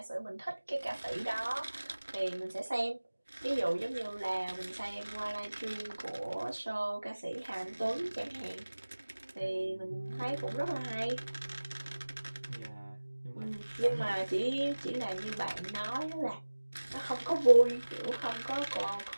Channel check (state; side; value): inverted; both; correlation -1.00